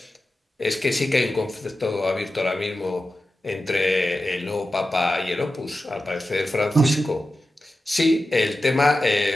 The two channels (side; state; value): both; normal; correlation 0.93